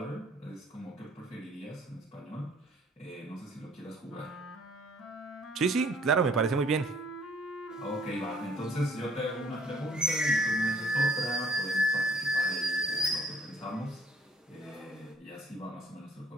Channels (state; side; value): normal; both; correlation 0.59